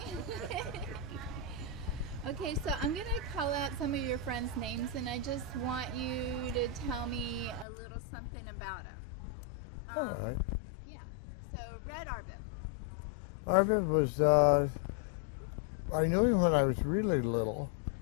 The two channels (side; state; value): right; drops out; at 7.7 s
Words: Okay, so I'm going to call out some of your friends' names, and I just want you to tell me a little something about them. All right. Yeah. So, Red Arbib. Marvin was, I knew him when I was really little,